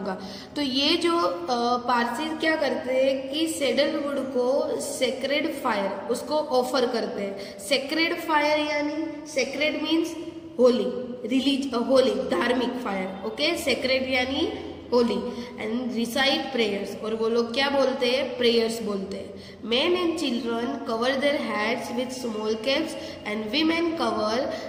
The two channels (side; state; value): both; identical; correlation 1.00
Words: तो ये जो पारसी क्या करते हैं कि सैडलवुड को सेक्रेड फायर उसको ऑफर करते हैं. सेक्रेड फायर यानी सेक्रेड मीन्स होली, होली धार्मिक फायर. ओके, सेक्रेड यानी होली. एंड रिसाइट प्रेयर्स, और वो लोग क्या बोलते हैं, प्रेयर्स बोलते हैं. Men and children cover their heads with small caps and women cover